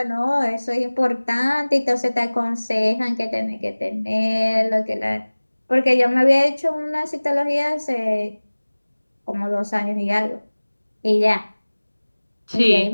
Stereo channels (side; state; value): both; inverted; correlation -1.00